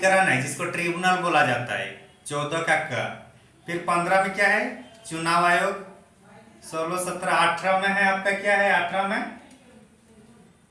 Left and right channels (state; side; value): identical; both; correlation 1.00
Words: है जिसको ट्रिब्यूनल बोला जाता है। 14 का क। फिर 15 में क्या है चुनाव आयोग। 16 17 18 में है आपका क्या है 18 में